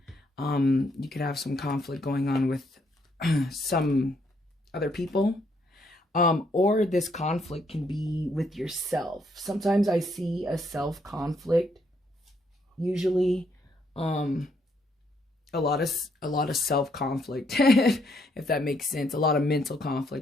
You could have some conflict going on with some other people. Or this conflict can be with yourself. Sometimes I see a self-conflict. Usually, a lot of self-conflict, if that makes sense. A lot of mental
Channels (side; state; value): both; normal; correlation 0.73